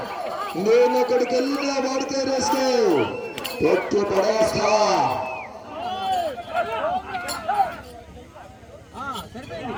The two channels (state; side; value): identical; both; correlation 1.00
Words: నేను అక్కడికి వెళ్ళినా వాడితే రేసుకో, ఎత్తి పడేస్తా.